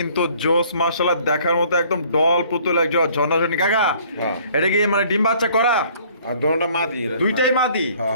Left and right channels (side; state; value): both; inverted; correlation -0.57